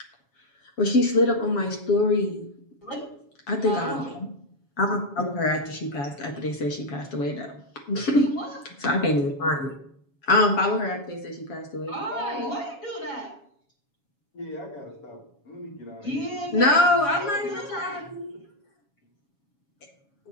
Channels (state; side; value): late; right; 7.2 ms